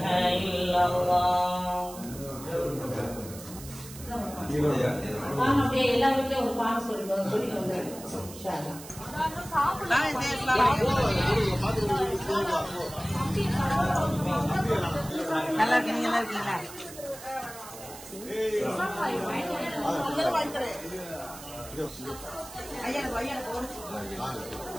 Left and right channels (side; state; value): right; noise; hiss, 15 dB below the sound